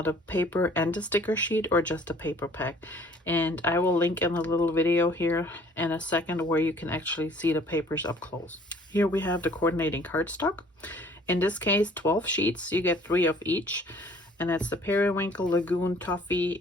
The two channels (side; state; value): both; normal; correlation 0.55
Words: paper and the sticker sheet, or just a paper pack. And I will link in a little video here in a second where you can actually see the papers up close. Here we have the coordinating cardstock. In this case, 12 sheets. You get 3 of each. And that's the Periwinkle, Lagoon, Toffee,